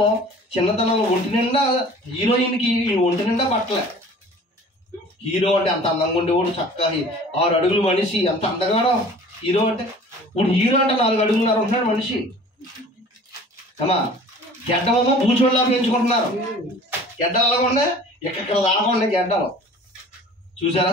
ఒంటి నిండా హీరోయిన్కి ఒంటి నిండా బట్టలే. హీరో అంటే అంత అందంగా ఉండేవాడు, చక్కగా 6 అడుగులు మనిషి, ఎంత అందగాడో హీరో అంటే. ఇప్పుడు హీరో అంటే 4 అడుగులున్నర ఉంటున్నాడు మనిషి. అమ్మా, గెడ్డమేమో బూచోళ్ళలా పెంచుకుంటున్నారు. గెడ్డలు అలాగకుండా ఎక్కడ దాకుండా గెడ్డలు. చూసారా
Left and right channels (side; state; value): both; normal; correlation 0.46